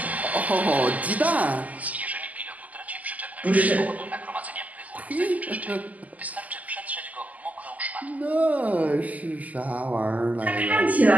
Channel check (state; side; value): late; left; 0.077 ms